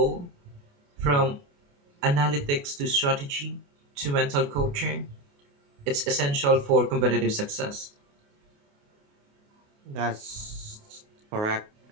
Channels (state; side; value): late; left; 28 ms